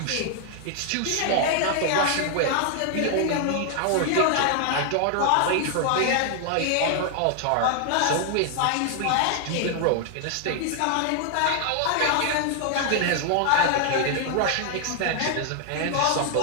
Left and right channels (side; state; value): both; different; correlation 0.00